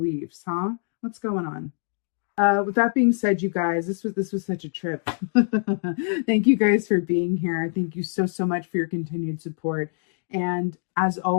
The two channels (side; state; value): right; silent; 62 dB below the other